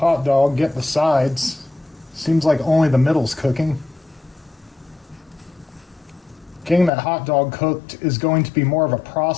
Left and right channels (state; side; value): drops out; right; at 6.9 s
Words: dog, get the sides. Seems like only the middle's cooking. Getting that hot dog cooked is going to be more of a